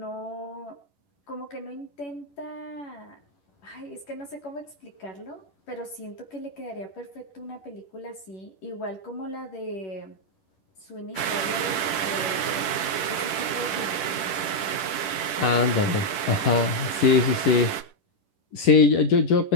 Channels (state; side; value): late; right; 10 ms